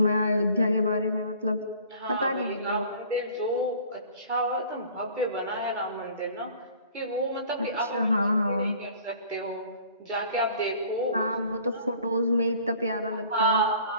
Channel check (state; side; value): inverted; both; correlation -0.50